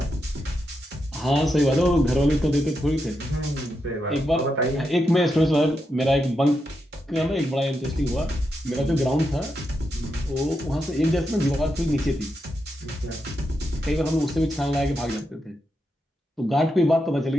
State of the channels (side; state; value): both; normal; correlation 0.85